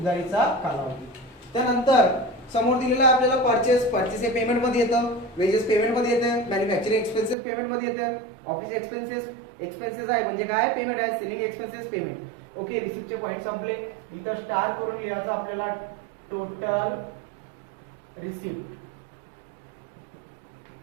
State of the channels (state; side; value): drops out; left; at 7.4 s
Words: कालावधी. त्यानंतर समोर दिलेला आहे आपल्याला परचेस हे पेमेंट मध्ये येतं, वेजेस पेमेंट मध्ये येतं, मॅन्युफॅक्चरिंग एक्सपेन्सेस पेमेंट मध्ये येतं, ऑफिस एक्सपेन्सेस आहे म्हणजे काय पेमेंट आहे, सेलिंग एक्सपेन्सेस पेमेंट. ओके, रिसिप्टचे पॉइंट संपले. इथं स्टार करून लिहायचं आपल्याला टोटल रिसिप्ट.